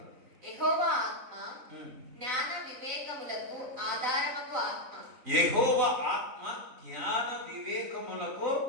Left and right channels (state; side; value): late; left; 3.9 ms